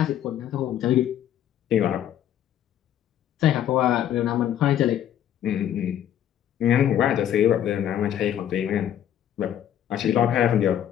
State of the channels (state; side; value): quieter; right; 10.7 dB